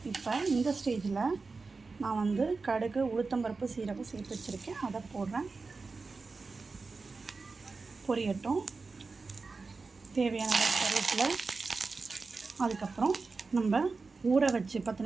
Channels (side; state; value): left; quieter; 4.2 dB